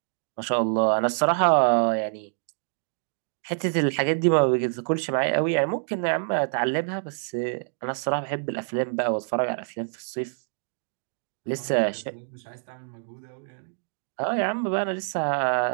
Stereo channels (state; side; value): silent; left; digital silence